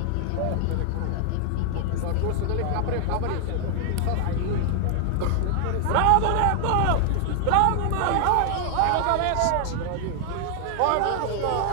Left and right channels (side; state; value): both; different; correlation 0.00